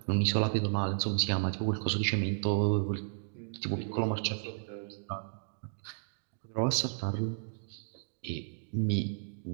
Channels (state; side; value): silent; left; digital silence